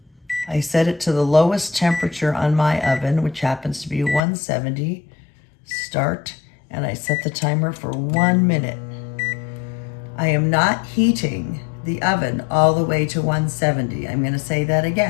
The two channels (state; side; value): drops out; right; at 4.2 s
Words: I set it to the lowest temperature on my oven, which happens to be 170. Start, and I set the timer for 1 minute. I am not heating the oven all the way to 170. I'm going to say that